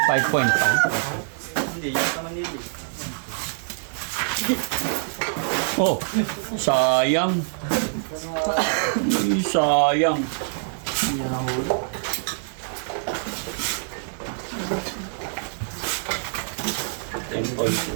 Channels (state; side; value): silent; left; digital silence